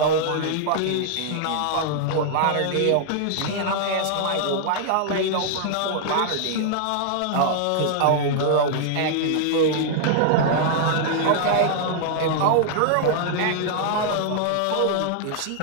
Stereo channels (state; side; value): different; both; correlation -0.01